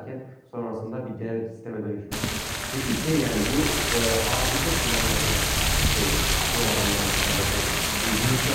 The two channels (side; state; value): both; identical; correlation 1.00